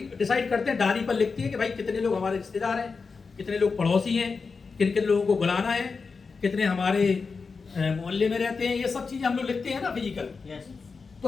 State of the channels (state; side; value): quieter; right; 4.8 dB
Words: डिसाइड करते हैं, डायरी पर लिखते हैं कि भाई कितने लोग हमारे रिश्तेदार हैं, कितने लोग पड़ोसी हैं, किन किन लोगों को बुलाना है, कितने हमारे मोहल्ले में रहते हैं, ये सब चीजें हम लोग लिखते हैं ना फिजिकल। तो